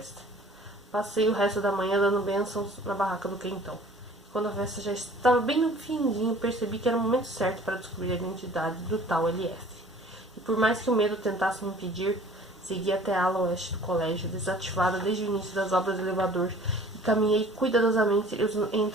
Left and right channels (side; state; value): both; normal; correlation 0.50